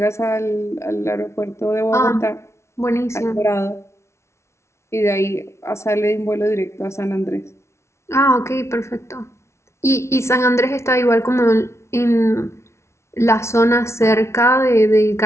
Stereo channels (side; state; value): right; late; 0.13 ms